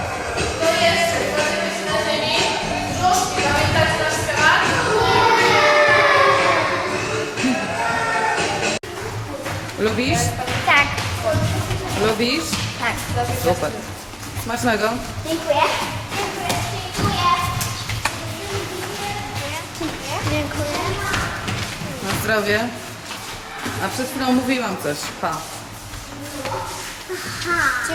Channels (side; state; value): both; identical; correlation 1.00